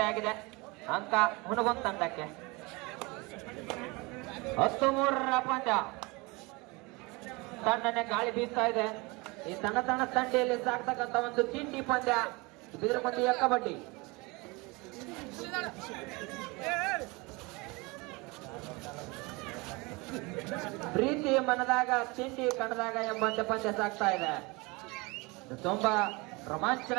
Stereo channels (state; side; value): quieter; left; 25.7 dB